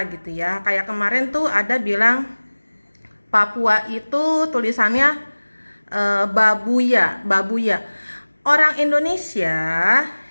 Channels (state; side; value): inverted; both; correlation -1.00